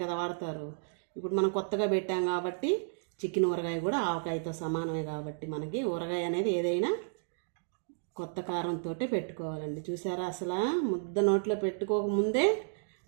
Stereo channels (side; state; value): left; silent; digital silence